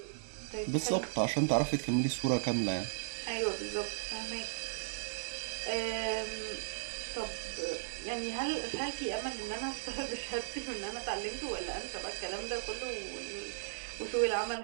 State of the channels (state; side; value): silent; left; digital silence